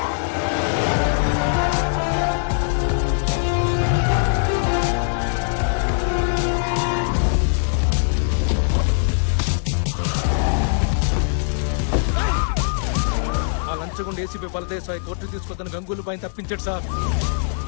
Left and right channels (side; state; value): right; silent; digital silence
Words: ACP బలదేశాయ్ కోర్టు తీసుకొద్దని గంగూలు పైన తప్పించాడు సార్.